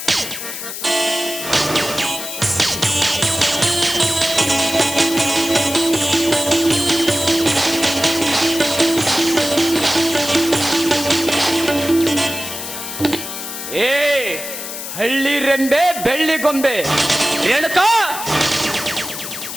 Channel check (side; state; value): left; noise; hiss, 8 dB below the sound